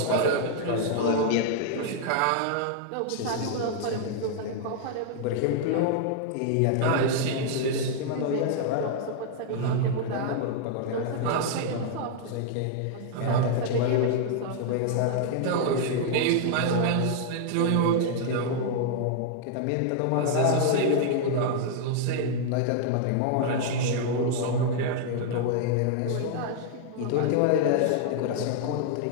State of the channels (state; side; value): different; both; correlation 0.00